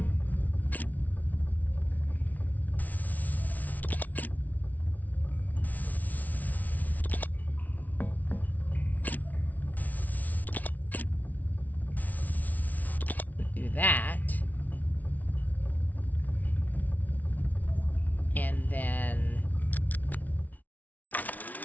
do that. And then...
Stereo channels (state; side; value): late; right; 0.076 ms